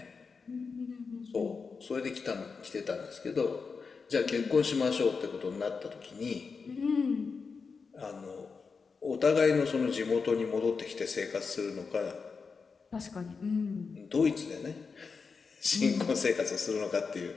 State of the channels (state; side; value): quieter; right; 5.1 dB